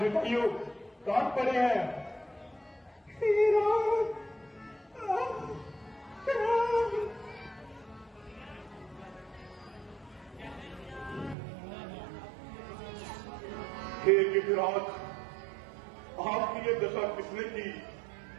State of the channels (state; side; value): drops out; left; at 11.4 s